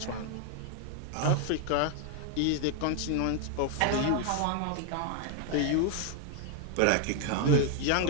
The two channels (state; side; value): different; both; correlation 0.00